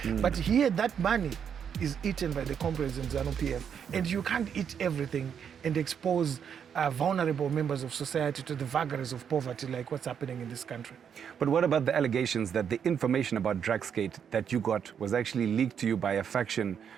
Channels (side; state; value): left; quieter; 7.8 dB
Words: but here that money is eaten by the Comrades and ZANU-PF. And you can't eat everything and expose vulnerable members of society to the vagaries of poverty like what's happening in this country. But what about the allegations that the information about Drugsgate that you got was actually leaked to you by a faction